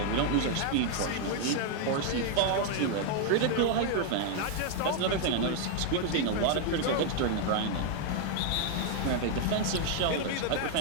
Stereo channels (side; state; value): both; different; correlation 0.00